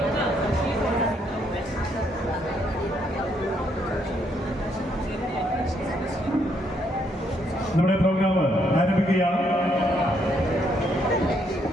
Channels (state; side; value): normal; both; correlation 0.73